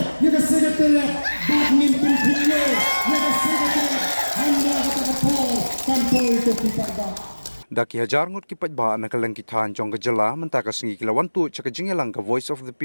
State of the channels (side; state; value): both; inverted; correlation -1.00